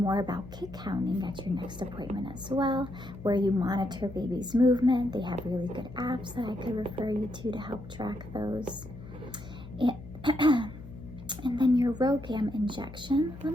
about kid counting at your next appointment as well, where you monitor baby's movement. They have really good apps that I could refer you to help track those. And then your RhoGAM injection. Let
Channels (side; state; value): left; noise; hum, 15 dB below the sound